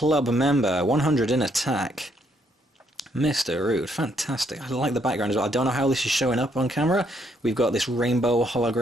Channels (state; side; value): normal; both; correlation 0.72